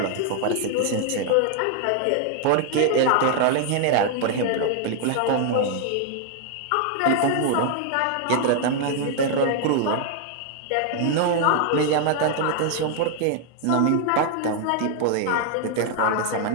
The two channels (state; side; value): different; both; correlation 0.00